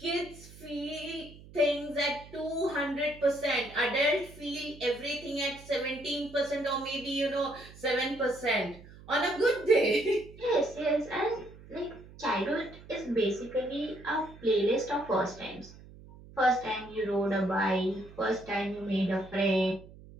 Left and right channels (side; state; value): right; noise; hum, 19 dB below the sound